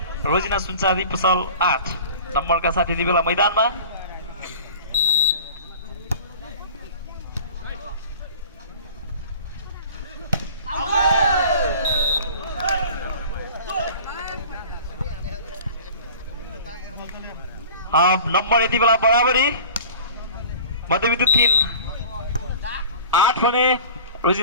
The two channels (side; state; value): both; inverted; correlation -0.42